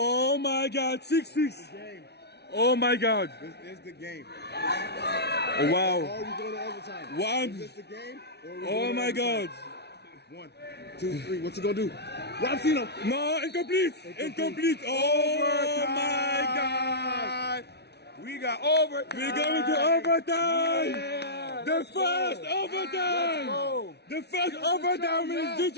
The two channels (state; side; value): late; right; 0.49 ms